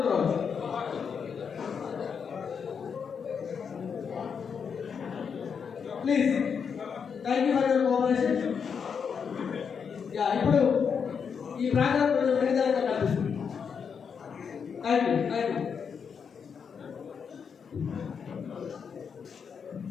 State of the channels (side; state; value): right; quieter; 6.5 dB